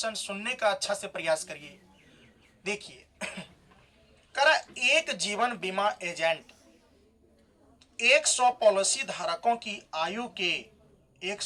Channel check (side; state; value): both; identical; correlation 1.00